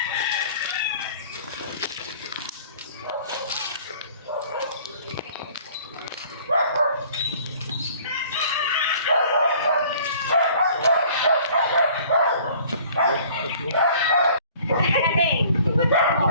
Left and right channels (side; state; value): both; inverted; correlation -0.53